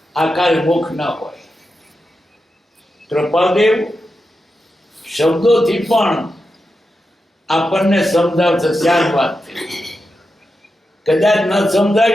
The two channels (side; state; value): both; normal; correlation 0.89